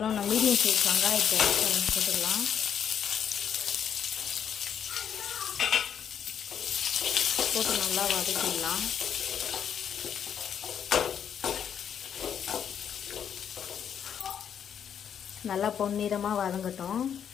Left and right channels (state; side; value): quieter; right; 8.4 dB